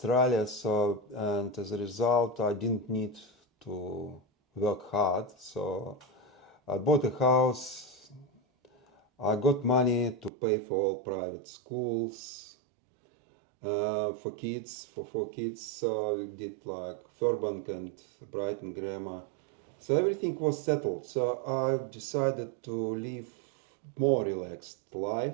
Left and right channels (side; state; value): left; drops out; at 10.3 s